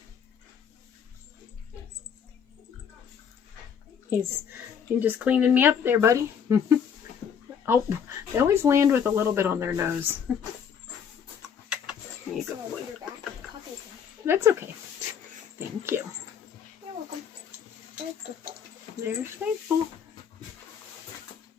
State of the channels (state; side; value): quieter; right; 7.5 dB